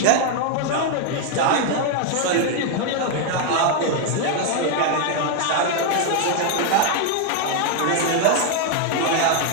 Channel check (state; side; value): different; both; correlation 0.01